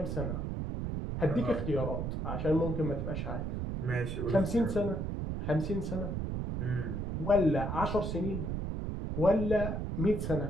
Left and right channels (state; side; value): noise; right; rumble, 3 dB below the sound